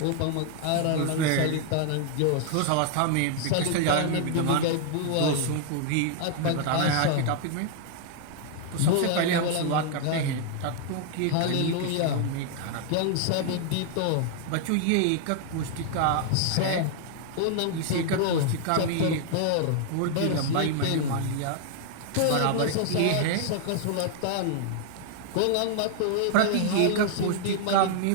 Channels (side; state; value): both; different; correlation 0.00